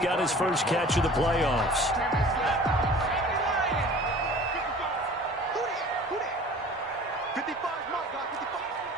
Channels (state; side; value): normal; both; correlation 0.45